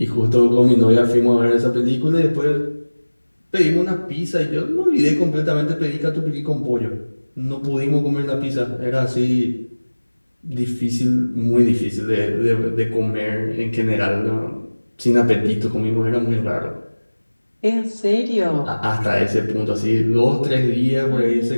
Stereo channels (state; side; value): inverted; both; correlation -1.00